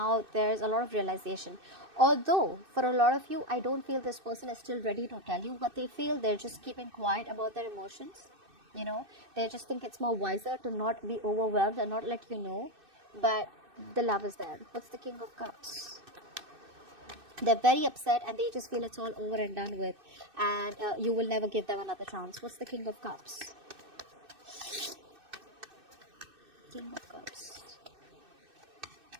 there's a lot of realization. Although, for a lot of you, I don't feel this person is still ready to tell you what they feel. They're just keeping quiet about their emotions. They just think it's more wiser to not be overwhelmed and not let you know. But the love is there. What's the King of Cups? They're very upset and they just feel it's all over and done with, and you will never give them another chance. What's the King of Cups? King of Cups.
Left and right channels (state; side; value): late; left; 2.6 ms